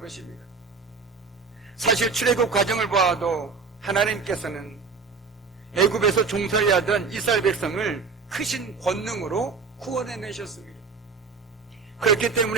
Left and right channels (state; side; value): quieter; left; 4.9 dB